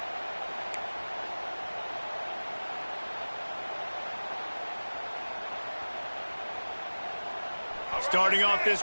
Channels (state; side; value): inverted; both; correlation -1.00